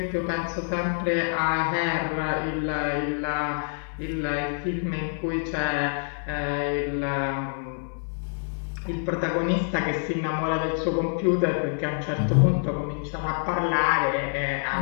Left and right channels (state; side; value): silent; right; 58 dB below the other